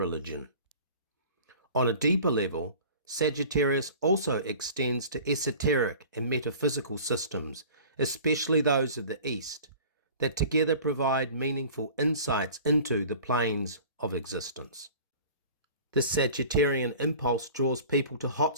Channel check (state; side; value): inverted; both; correlation -0.43